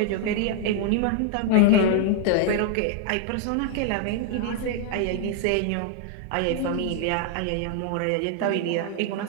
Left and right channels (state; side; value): different; both; correlation 0.00